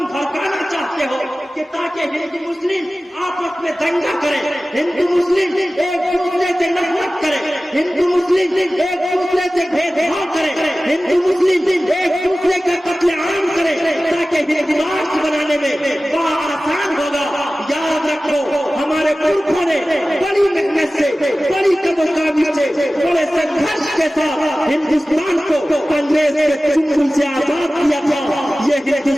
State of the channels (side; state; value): both; normal; correlation 0.96